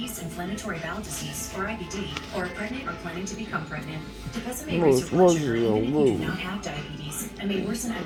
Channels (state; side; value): identical; both; correlation 1.00